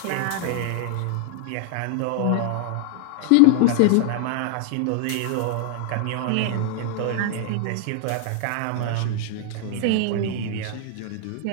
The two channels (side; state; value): both; different; correlation -0.01